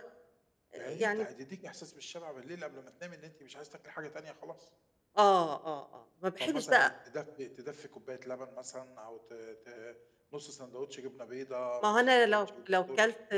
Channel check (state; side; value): identical; both; correlation 1.00